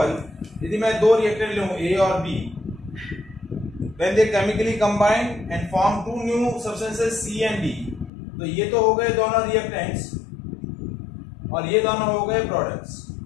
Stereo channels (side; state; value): right; drops out; at 8.1 s